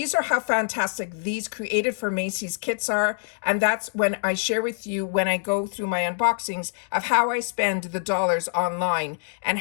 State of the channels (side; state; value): right; silent; digital silence